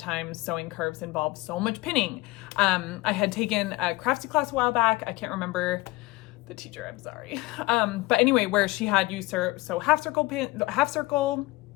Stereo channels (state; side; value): quieter; right; 21.1 dB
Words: sewing curves involve so much pinning. I had taken a craftsy class a while back. I can't remember the teacher, I'm sorry. But anyway, where she had you sew half circle